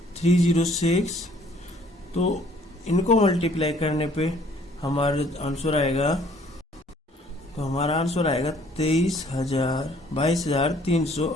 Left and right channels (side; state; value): both; normal; correlation 0.59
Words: 306, तो इनको मल्टीप्लाई करने पे हमारा आंसर आएगा, तो हमारा आंसर आएगा